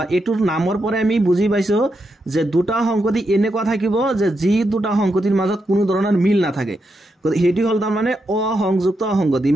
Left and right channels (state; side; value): normal; both; correlation 0.84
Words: এটোৰ নামৰ পৰে আমি বুজি পাইছো যে দুটা সংহতি এনেকুৱা থাকিব যে যি দুটা সংহতিৰ মাজত কোনো ধৰণৰ মিল না থাকে হেটি হল তাৰ মানে অসংযুক্ত সংহতি